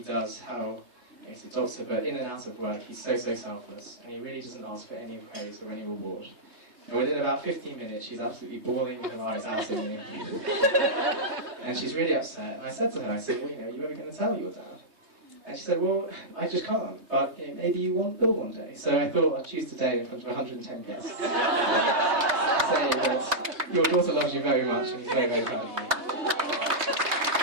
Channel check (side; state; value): left; late; 3.2 ms